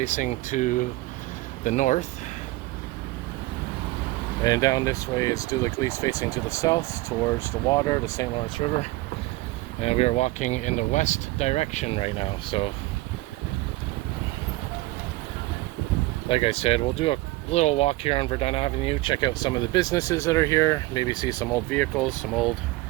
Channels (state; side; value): quieter; left; 19.6 dB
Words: to the north. And down this way is De l'Église facing to the south towards the water, the St. Lawrence River. And we are walking in the west direction right now. So like I said, we'll do a little walk here on Verdun Avenue, check out some of the businesses that are here, maybe see some old vehicles, some old